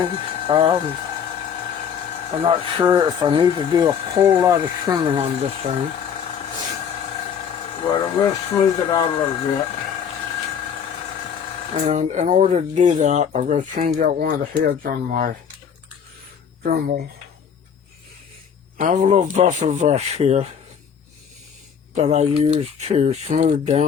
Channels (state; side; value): quieter; right; 7.4 dB